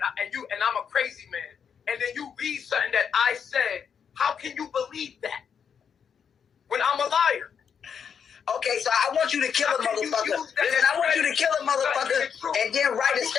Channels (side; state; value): right; quieter; 7.2 dB